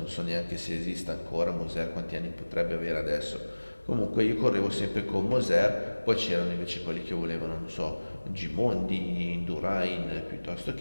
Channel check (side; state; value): both; inverted; correlation -1.00